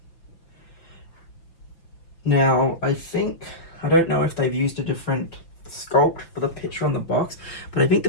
Now I don't know if they've used a different sculpt for the picture on the box, but I think the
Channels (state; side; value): late; right; 5.9 ms